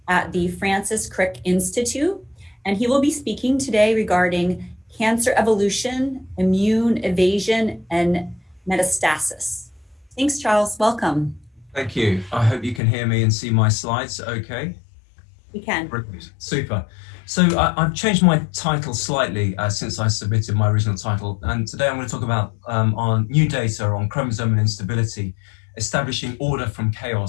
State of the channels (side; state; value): right; drops out; at 12.8 s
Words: at the Francis Crick Institute. And he will be speaking today regarding cancer evolution, immune evasion, and metastasis. Thanks, Charles. Welcome. Thank you. I hope you can hear me and see my slides okay. We can. Brilliant. Super. So I've changed my title slightly since I submitted my original title. And today I'm going to talk about on new data on chromosomal instability, establishing order from